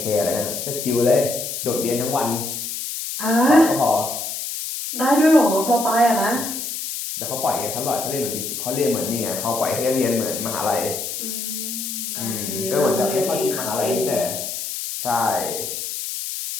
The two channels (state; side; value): noise; left; hiss, 5 dB below the sound